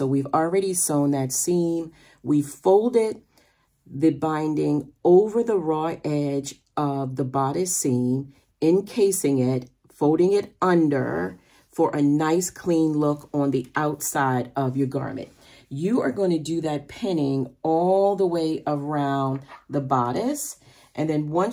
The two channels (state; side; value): identical; both; correlation 1.00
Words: we've already sewn that seam. We folded the binding over the raw edge of the bodice seam, encasing it, folding it under for a nice clean look on the outside of your garment. You are going to do that pinning all the way around the bodice. And then